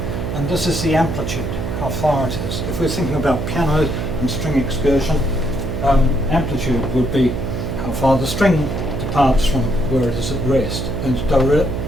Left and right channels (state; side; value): noise; right; hum, 3 dB below the sound